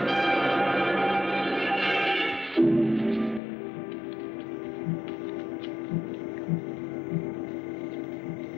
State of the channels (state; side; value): drops out; right; at 3.4 s